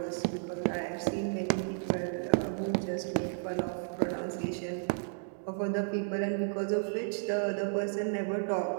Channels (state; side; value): silent; left; 56 dB below the other